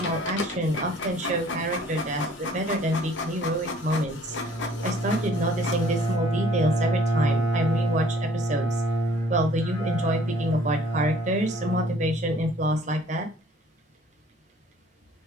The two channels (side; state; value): both; normal; correlation 0.56